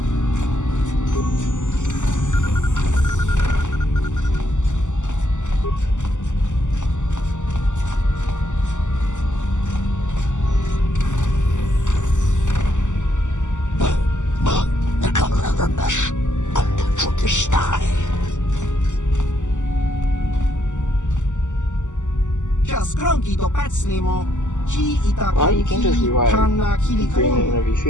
Well, you can just rewrite the agreement whenever you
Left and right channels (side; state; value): right; late; 0.85 ms